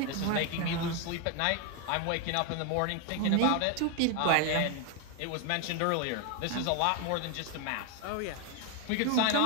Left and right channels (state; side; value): different; both; correlation 0.01